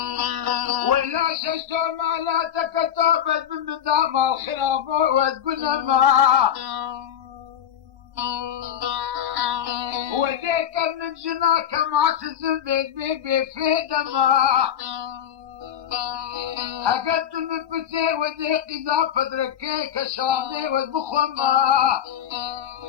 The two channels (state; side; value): quieter; right; 9.7 dB